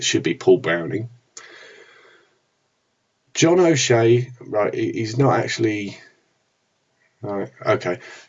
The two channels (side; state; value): both; identical; correlation 1.00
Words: should be Paul Browning. John O'Shea, right, he's not actually... Right, okay.